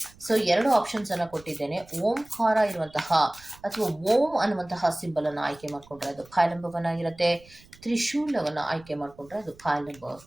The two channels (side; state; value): right; noise; rumble, 25 dB below the sound